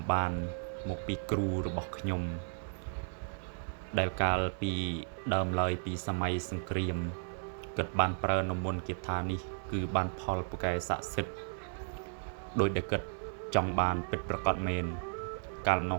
បានមកពីគ្រូរបស់ខ្ញុំដែលកាលពីដើមឡើយពីសម័យសង្គ្រាមគាត់បានប្រើនៅមន្តគាថានេះគឺបានផលពូកែស័ក្តិសិទ្ធិដោយដែលគាត់ចង់បានពិតប្រាកដមែនកាលនោ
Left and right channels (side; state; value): left; silent; 55 dB below the other